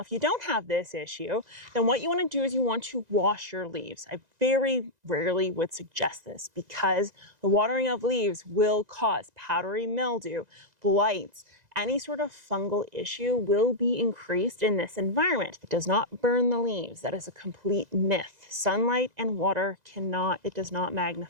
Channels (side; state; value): left; late; 2.0 ms